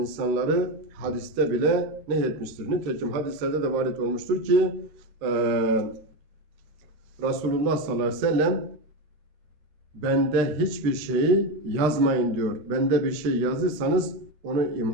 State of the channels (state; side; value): late; left; 13 ms